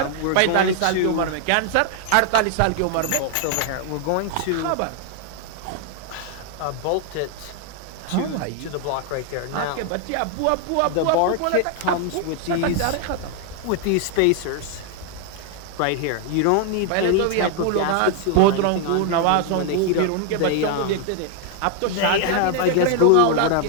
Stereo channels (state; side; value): different; both; correlation 0.00